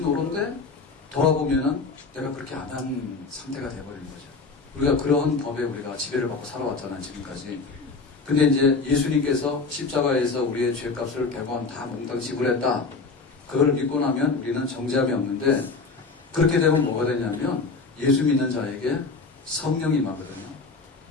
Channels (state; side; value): quieter; right; 4.1 dB